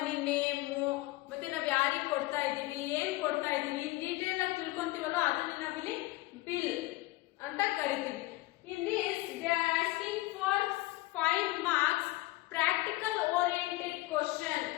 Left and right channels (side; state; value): right; quieter; 19.1 dB